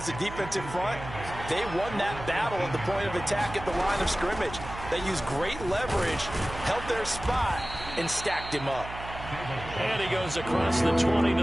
the defensive front, they won that battle at the point of attack at the line of scrimmage. They used great leverage, held their spot, and stacked him up. And he goes across the 20 to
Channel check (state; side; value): noise; right; hum, 11 dB below the sound